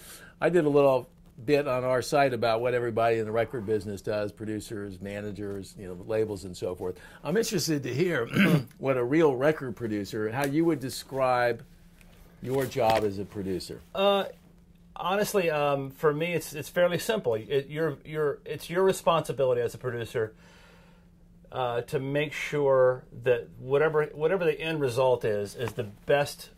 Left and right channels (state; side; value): identical; both; correlation 1.00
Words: I did a little bit on our site about what everybody in the record business does, producers, managers, you know, labels and so forth. I'm interested to hear what a real record producer, how you would describe your job as a producer. Honestly, for me, it's fairly simple. It's your responsibility as a producer to make sure that whatever the end result is the best